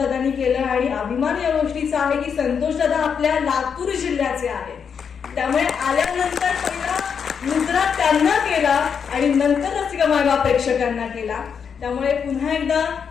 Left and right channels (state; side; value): quieter; right; 6.8 dB